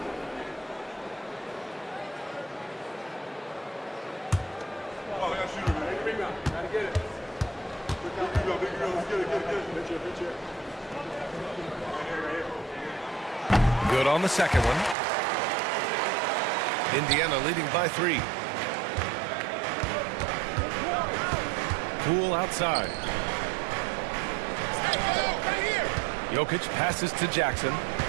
Good on the second one. Indiana leading by 3. Poole outside. Jokic passes to Jackson.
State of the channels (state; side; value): drops out; left; at 15.0 s